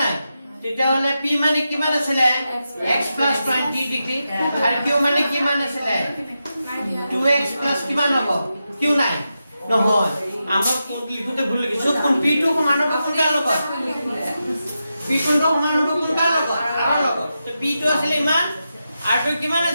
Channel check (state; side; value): inverted; both; correlation -0.89